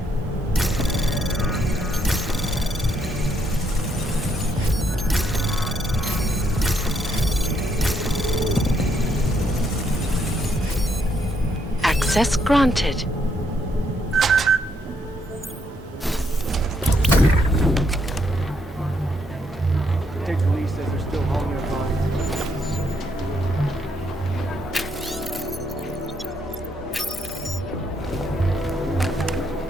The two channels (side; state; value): both; normal; correlation 0.74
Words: Access granted. Takes release says they're still hauling their bodies.